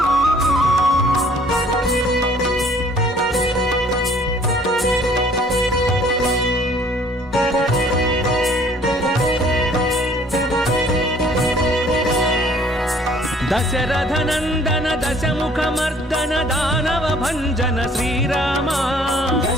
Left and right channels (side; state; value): both; normal; correlation 0.57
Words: దశరథ నందన దశముఖ మర్దన దానవ భంజన శ్రీరామ